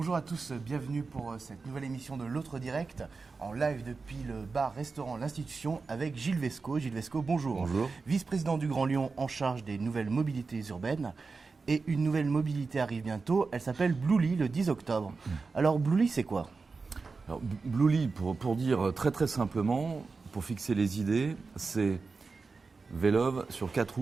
à tous, bienvenue pour cette nouvelle émission de l'Autre Direct, en live depuis le bar-restaurant L'Institution avec Gilles Vesco. Gilles Vesco, bonjour. Bonjour. Vice-président du Grand Lyon en charge des nouvelles mobilités urbaines. Et une nouvelle mobilité arrive bientôt, elle s'appelle Bluely le 10 octobre. Alors Bluely, c'est quoi? Alors, Bluely, pour dire très simplement, pour fixer les idées, c'est Vélove sur 4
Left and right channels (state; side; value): quieter; left; 4.3 dB